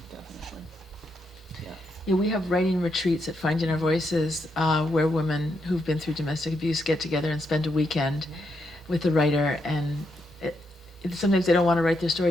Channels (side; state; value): both; normal; correlation 0.80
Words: definitely. Yeah. Yeah, we have writing retreats at Finding Our Voices, where women who've been through domestic abuse get together and spend a weekend with the writer, and sometimes they don't want to write their